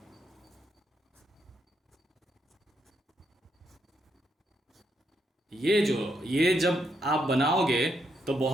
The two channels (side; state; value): both; normal; correlation 0.78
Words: ये जब आप बनाओगे तो